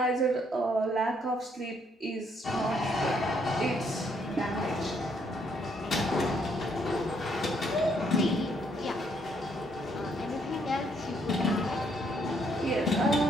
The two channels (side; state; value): both; normal; correlation 0.70